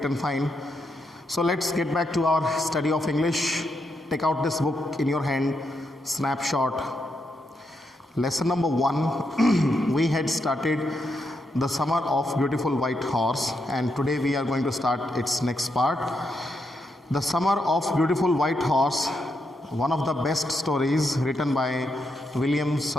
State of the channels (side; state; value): both; normal; correlation 0.81